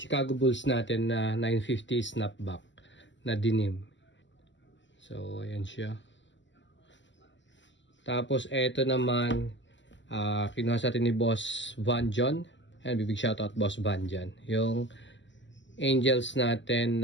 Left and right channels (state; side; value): late; right; 0.54 ms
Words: Chicago Bulls natin na 950 snapback na denim. So, ayan siya. Tapos, eto naman, kinuha sa atin ni Boss Van John. Ayan, big shoutout Boss Van John. Yung Angels